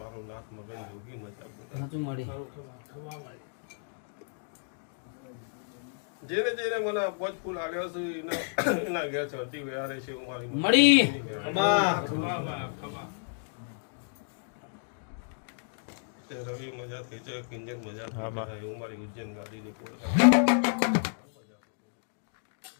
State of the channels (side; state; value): right; silent; digital silence